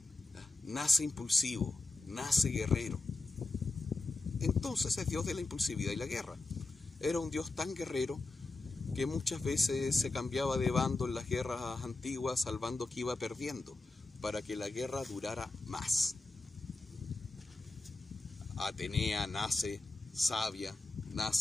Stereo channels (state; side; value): quieter; right; 3.2 dB